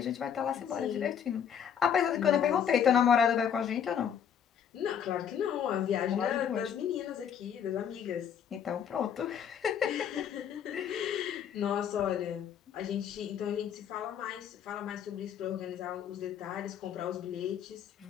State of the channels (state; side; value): quieter; right; 8.4 dB